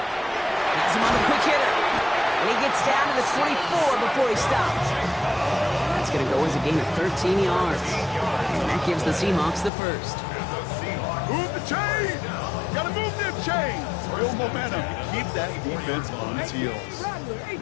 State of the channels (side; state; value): right; drops out; at 9.7 s